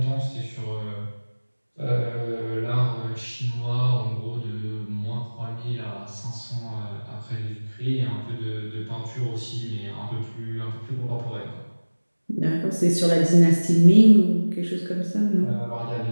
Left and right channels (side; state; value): both; inverted; correlation -1.00